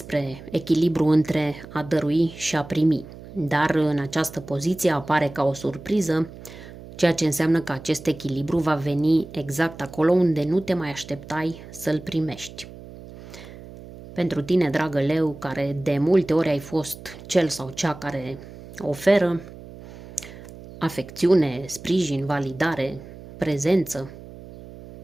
echilibru între a dărui și a primi, dar în această poziție apare ca o surpriză, ceea ce înseamnă că acest echilibru va veni exact acolo unde nu te mai așteptai să-l primești. Pentru tine, dragă leu, care de multe ori ai fost cel sau cea care oferă afecțiune, sprijin, validare, prezență,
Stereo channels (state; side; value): noise; right; hum, 16 dB below the sound